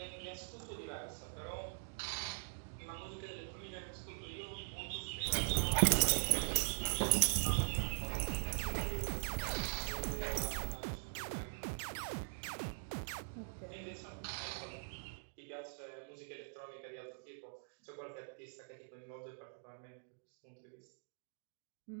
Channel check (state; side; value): silent; left; digital silence